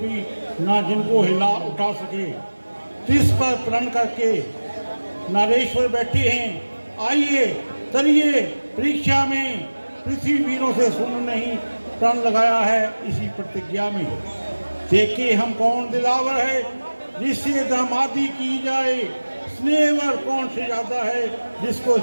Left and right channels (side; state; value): both; inverted; correlation -1.00